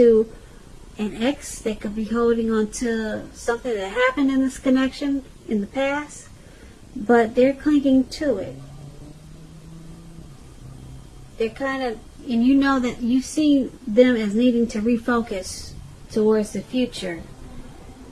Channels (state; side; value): identical; both; correlation 1.00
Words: an ex. They could be holding on to something that happened in this connection in the past. But they're clinging to it. They're kind of, and you know that you see them as needing to refocus towards the future.